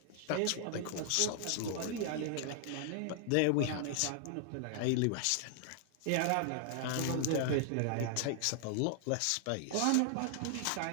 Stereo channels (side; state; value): both; different; correlation 0.00